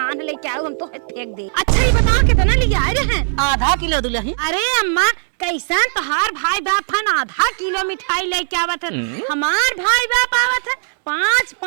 लेके आओ हम तो फेंक दे। अच्छा ये बता कितना ले आए रहन? आधा किलो दुल्हन। अरे अम्मा कैसन तोहार भाई बाप हन आधा किलो मिठाई लेके आवत है, हमार भाई बाप आवत है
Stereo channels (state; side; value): silent; left; digital silence